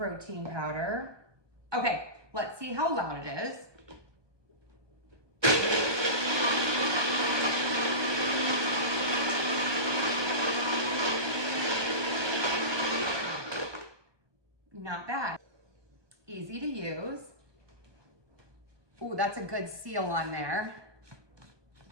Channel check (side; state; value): left; late; 1.2 ms